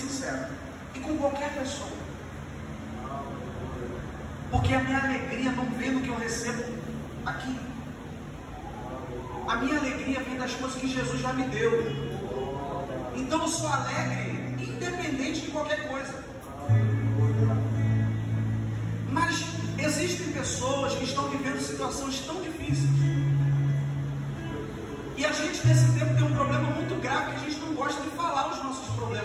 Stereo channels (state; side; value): identical; both; correlation 1.00